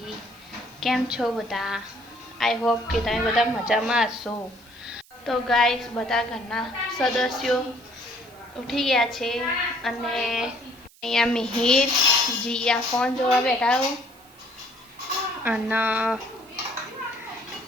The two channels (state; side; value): noise; right; hiss, 27 dB below the sound